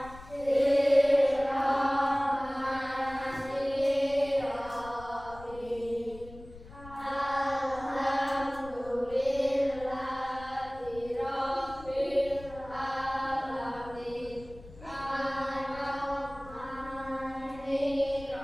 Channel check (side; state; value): left; noise; rumble, 18 dB below the sound